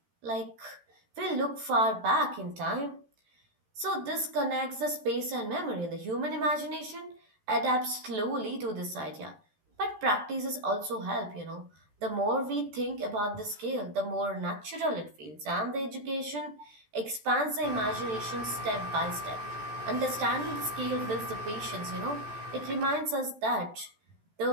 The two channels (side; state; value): left; late; 14 ms